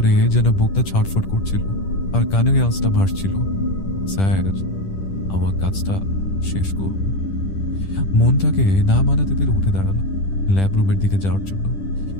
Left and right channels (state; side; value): late; right; 10 ms